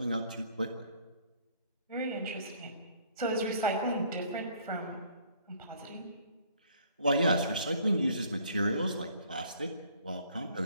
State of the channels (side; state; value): both; inverted; correlation -0.59